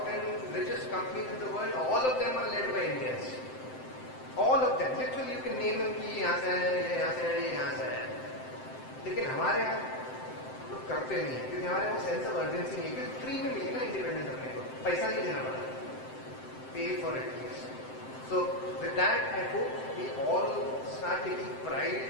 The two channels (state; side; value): late; right; 7.7 ms